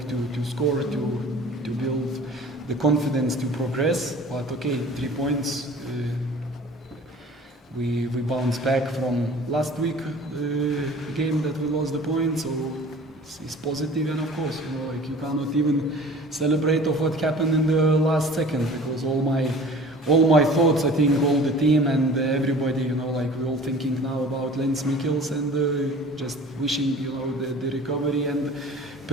to score, to build the confidence to progress. But okay, 3 points. We bounced back from last week game that we lost the point, so it's positive. And of course, like you cannot even celebrate of what happened in the last second, because all my thoughts, I think all the team and everybody, like we're all thinking now about Lens Mikkels and just wishing, the recovery and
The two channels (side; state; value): both; normal; correlation 0.44